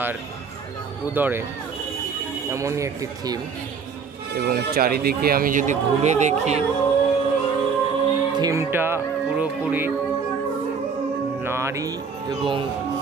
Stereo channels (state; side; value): quieter; left; 5.7 dB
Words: উদরে, এমনই একটি থিম। এবং চারিদিকে আমি যদি ঘুরে দেখি, থিমটা পুরোপুরি নারী এবং